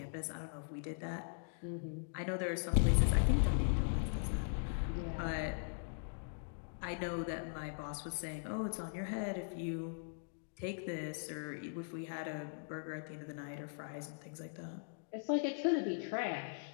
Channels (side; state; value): right; silent; digital silence